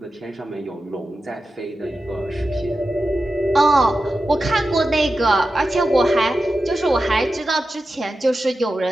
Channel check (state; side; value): normal; both; correlation 0.92